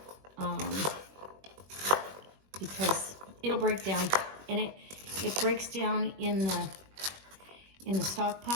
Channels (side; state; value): left; late; 21 ms